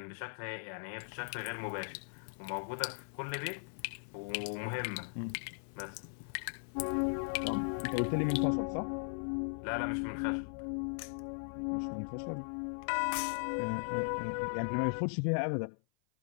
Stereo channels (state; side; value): silent; right; 53 dB below the other